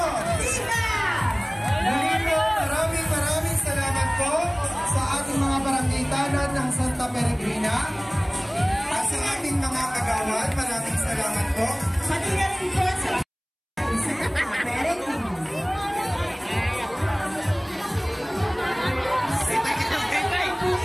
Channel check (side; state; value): both; identical; correlation 1.00